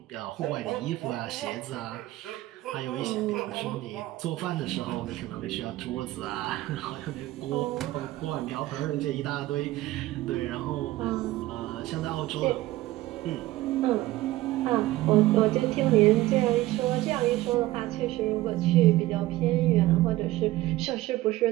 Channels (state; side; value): quieter; left; 17.0 dB